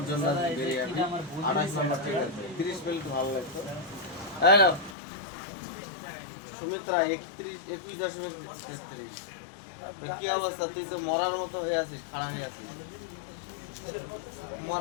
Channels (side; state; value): right; drops out; at 5.0 s